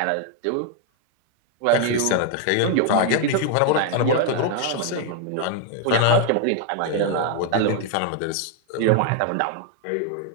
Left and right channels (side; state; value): both; different; correlation 0.00